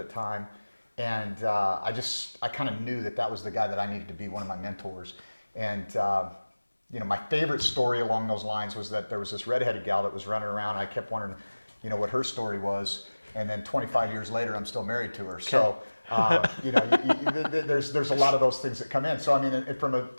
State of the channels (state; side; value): inverted; both; correlation -1.00